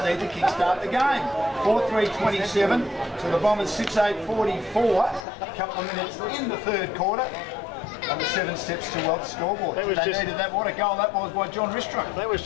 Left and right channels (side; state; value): right; drops out; at 5.2 s